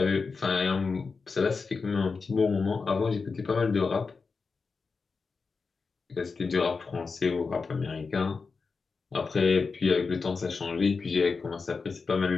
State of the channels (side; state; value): right; quieter; 4.7 dB